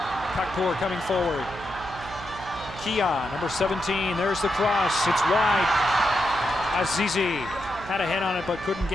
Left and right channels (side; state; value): right; noise; hum, 14 dB below the sound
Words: Kakpour coming forward. Kia, number 17. There's the cross. It's wide. Azizi had a head on it, but couldn't